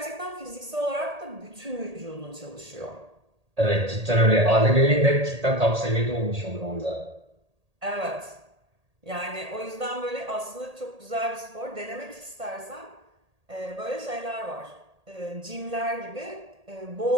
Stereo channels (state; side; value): late; left; 1.8 ms